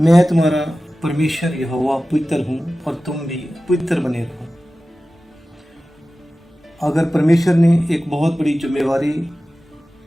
तुम्हारा परमेश्वर यहोवा पवित्र हूँ और तुम भी पवित्र बने रहो। अगर परमेश्वर ने एक बहुत बड़ी जिम्मेवारी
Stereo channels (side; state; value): both; normal; correlation 0.96